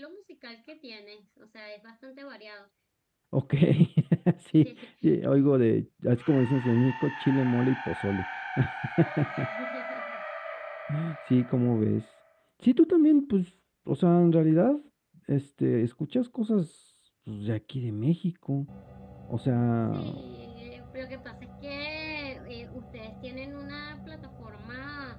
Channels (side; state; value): both; identical; correlation 1.00